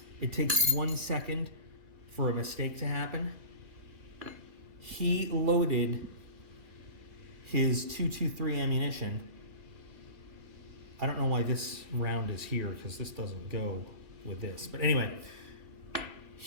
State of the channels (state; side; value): late; left; 2.2 ms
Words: It takes 1 second for a mistake to happen. He loaded his .223 ammunition. I don't know why this round is here because this doesn't go with this. But anyway,